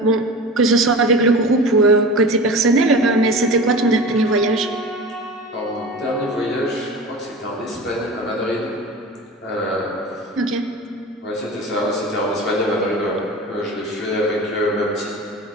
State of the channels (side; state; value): both; normal; correlation 0.33